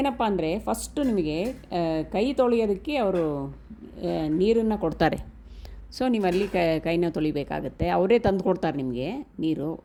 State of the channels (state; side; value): identical; both; correlation 1.00